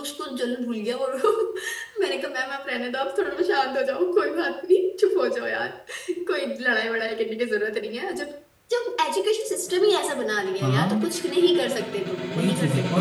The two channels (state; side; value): identical; both; correlation 1.00